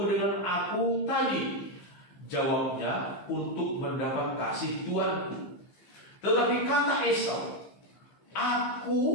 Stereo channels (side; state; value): right; late; 15 ms